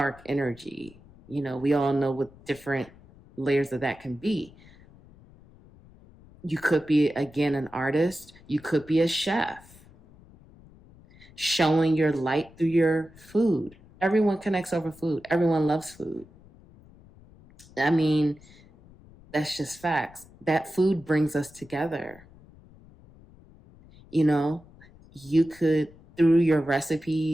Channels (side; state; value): left; noise; rumble, 24 dB below the sound